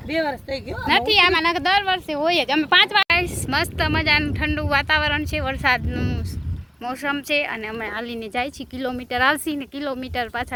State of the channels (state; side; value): identical; both; correlation 1.00